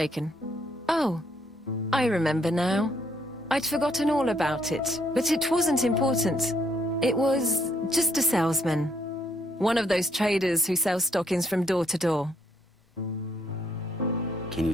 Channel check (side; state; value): both; normal; correlation 0.70